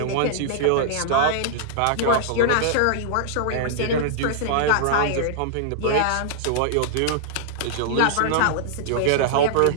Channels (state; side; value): different; both; correlation -0.01